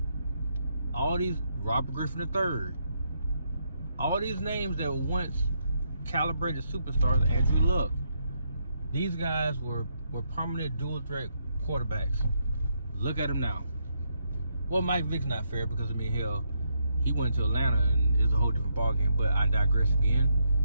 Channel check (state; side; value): inverted; both; correlation -0.77